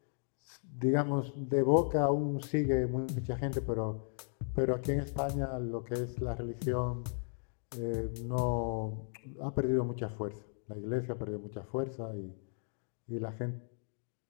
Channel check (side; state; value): right; silent; digital silence